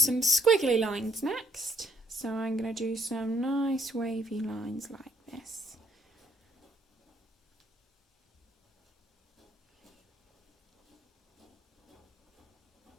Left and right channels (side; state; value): both; normal; correlation 0.65